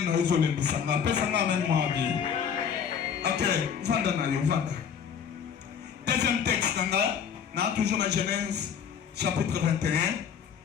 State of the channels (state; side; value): quieter; right; 7.5 dB